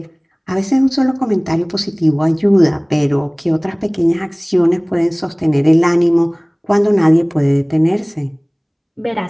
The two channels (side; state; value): both; identical; correlation 1.00